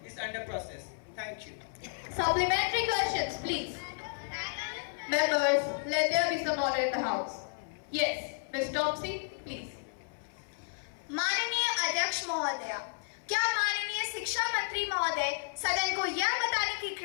is under process. Thank you. Supplementary questions, please. Members, let there be some order in the House. Yes, Ms. Topsy, please. माननीय अध्यक्ष महोदय, क्या माननीय शिक्षा मंत्री महोदय सदन को यह बताने की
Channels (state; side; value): silent; right; 56 dB below the other